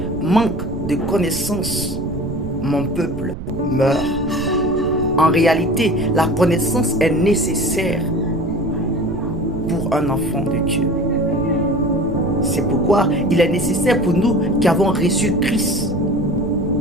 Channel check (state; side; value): noise; right; rumble, 9 dB below the sound